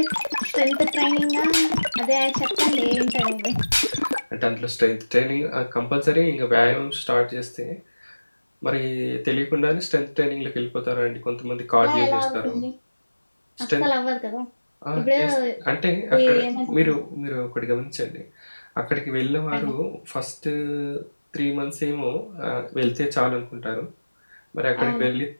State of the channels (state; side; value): inverted; both; correlation -1.00